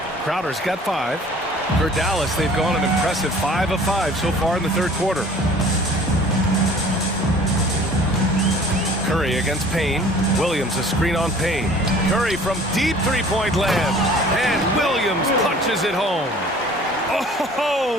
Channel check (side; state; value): both; normal; correlation 0.49